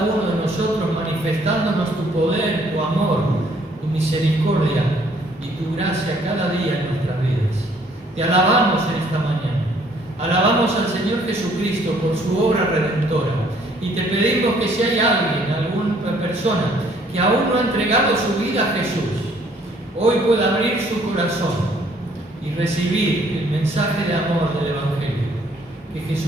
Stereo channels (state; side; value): normal; both; correlation 0.62